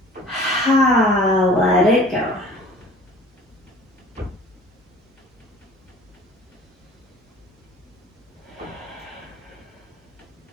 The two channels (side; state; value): both; normal; correlation 0.47